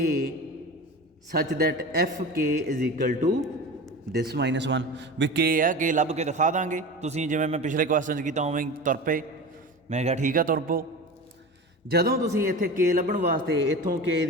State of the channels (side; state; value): both; normal; correlation 0.31